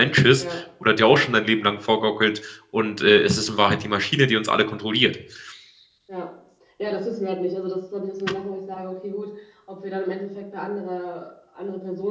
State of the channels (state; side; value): identical; both; correlation 1.00